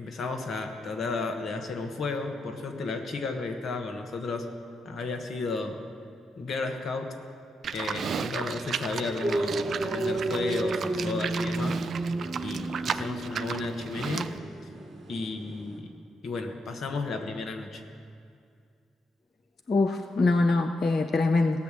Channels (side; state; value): both; normal; correlation 0.81